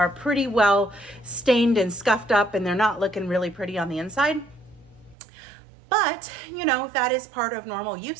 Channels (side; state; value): left; drops out; at 5.2 s